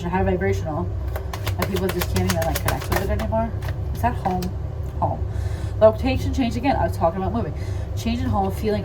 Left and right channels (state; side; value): identical; both; correlation 1.00